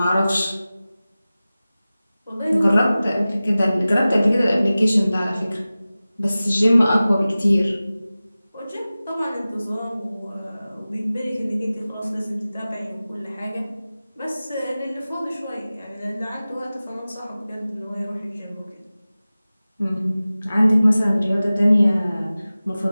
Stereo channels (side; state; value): both; inverted; correlation -0.97